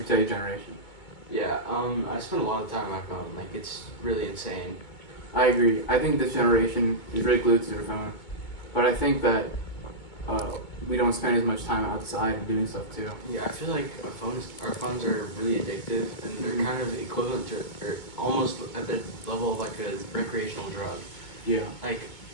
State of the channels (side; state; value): right; late; 2.2 ms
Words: for today's generation. Yeah, I spend a lot of time on my phone. Like, it's really insane. I agree. I think this generation is really glued to their phone. But I think that we don't spend as much time outside and doing stuff too. Yeah, I feel like our phones are really addictive, and they're kind of equivalent to, or almost at the level of like a recreational drug. Yeah. Like,